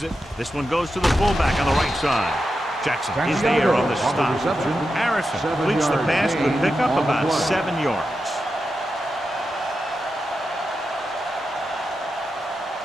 it. This one goes to the fullback on the right side. Jackson is there on the stop. Harrison completes the pass, could pick up about 7 yards.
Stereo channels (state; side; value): normal; both; correlation 0.89